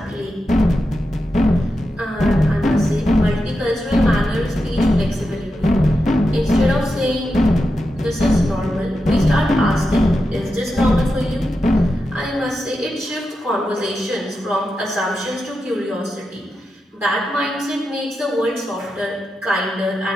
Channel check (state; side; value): normal; both; correlation 0.89